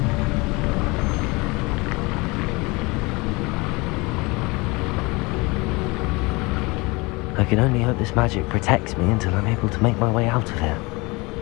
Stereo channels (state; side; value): quieter; right; 25.2 dB